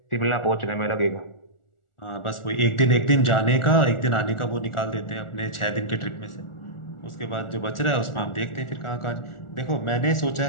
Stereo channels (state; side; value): late; right; 1.4 ms